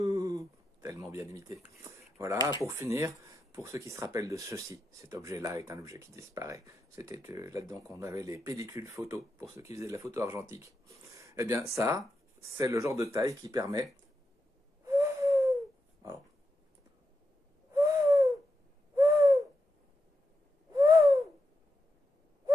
tellement bien imité. Voilà, pour finir, pour ceux qui se rappellent de ceci, cet objet-là est un objet qui disparaît. C'était là-dedans qu'on avait les pellicules photo, pour ceux qui faisaient de la photo argentique. Eh bien, ça, c'est le genre de taille qui permet... Alors,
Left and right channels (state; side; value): normal; both; correlation 0.86